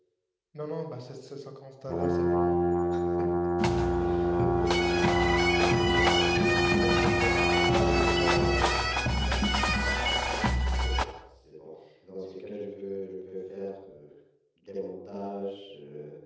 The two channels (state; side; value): identical; both; correlation 1.00